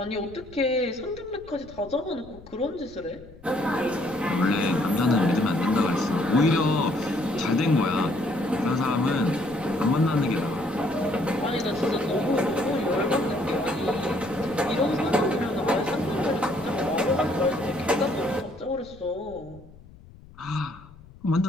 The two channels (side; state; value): left; noise; rumble, 21 dB below the sound